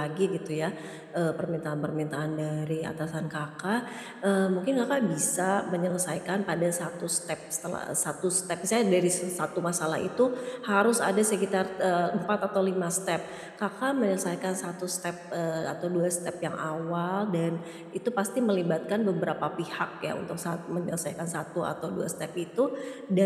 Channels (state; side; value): identical; both; correlation 1.00